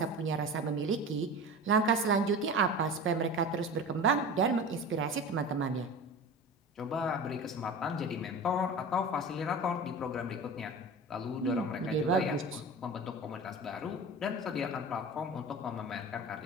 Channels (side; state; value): both; normal; correlation 0.33